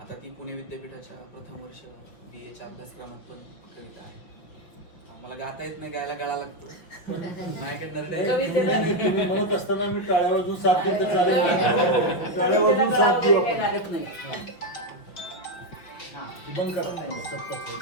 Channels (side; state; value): right; late; 5.8 ms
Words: आता ती पुणे विद्यापीठाच्या प्रथम वर्ष BAच्या अभ्यासक्रमात पण कविता आहे. मला गाता येत नाही, गायला गळा लागतो. माझ्याकडे तुम्ही म्हणत असताना मी टाळ्या वाजून साथ देत चालेल, टाळ्या वाजून साथ देऊ आपण. बंद करा,